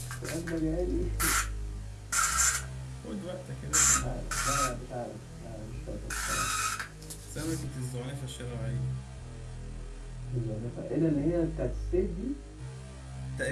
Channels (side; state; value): both; identical; correlation 1.00